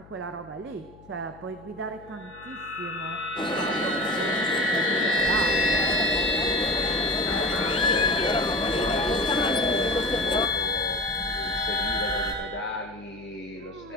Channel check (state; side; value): noise; left; hum, 23 dB below the sound